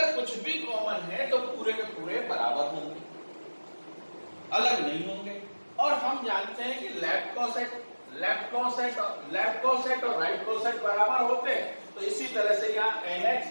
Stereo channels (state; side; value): inverted; both; correlation -1.00